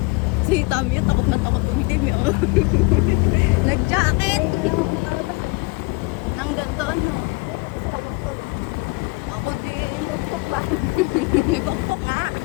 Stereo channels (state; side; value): quieter; right; 27.4 dB